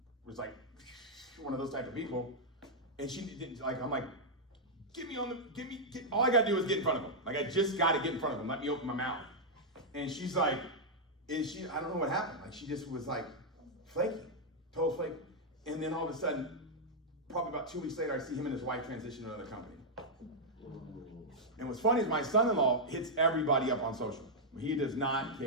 like one of those type of people. And she didn't, like, I'm like, all I got to do is get in front of them. Like, I just got to get in front of them. Let me open my mouth. And she's like, I don't know what happened. Like, she just was like flaky, total flake. And then all of a sudden, probably about 2 weeks later, I see him and his wife transition to another company. And what's funny is my son-in-law hits everybody up on social. He does not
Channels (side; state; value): both; normal; correlation -0.05